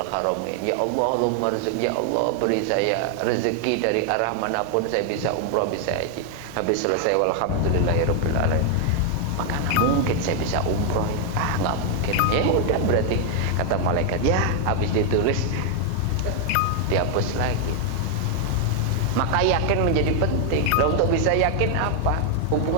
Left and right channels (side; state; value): both; different; correlation 0.00